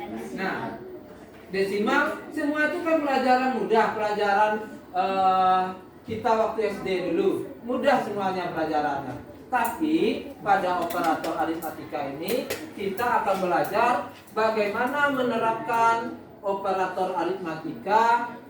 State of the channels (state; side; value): identical; both; correlation 1.00